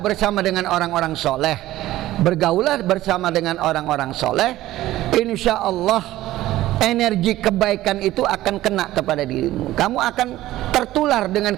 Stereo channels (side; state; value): left; quieter; 15.4 dB